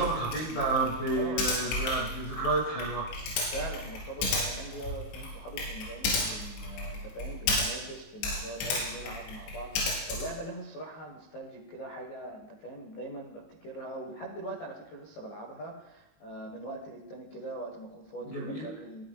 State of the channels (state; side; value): late; right; 19 ms